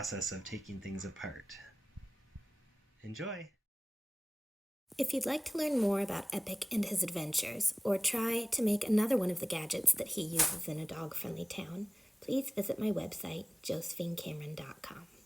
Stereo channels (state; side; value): normal; both; correlation 0.98